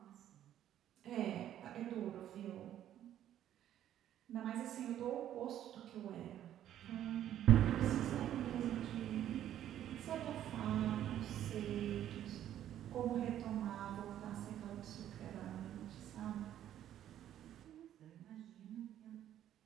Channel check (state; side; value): quieter; left; 11.4 dB